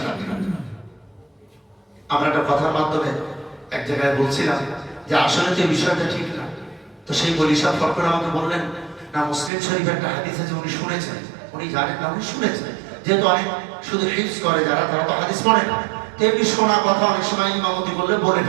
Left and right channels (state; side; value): drops out; left; at 9.5 s